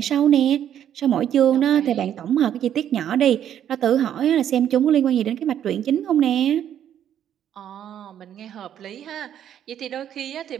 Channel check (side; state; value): left; quieter; 10.1 dB